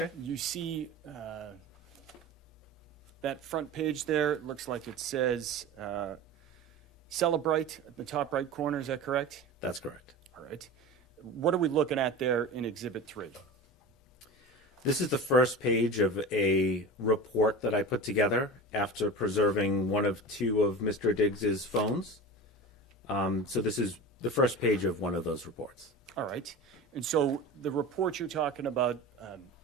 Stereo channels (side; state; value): both; normal; correlation 0.31